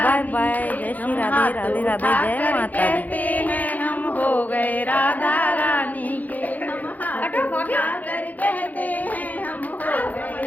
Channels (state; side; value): late; right; 0.080 ms